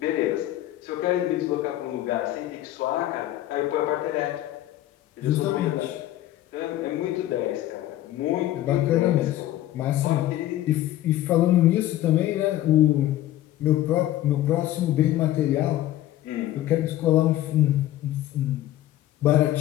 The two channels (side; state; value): right; quieter; 14.0 dB